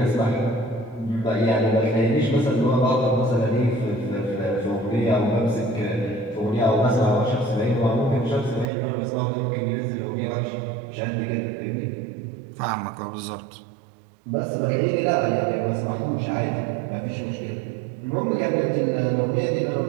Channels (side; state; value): left; drops out; at 8.7 s